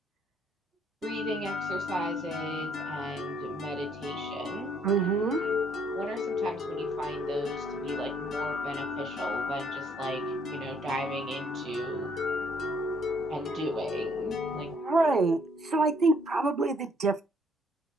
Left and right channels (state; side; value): normal; both; correlation 0.65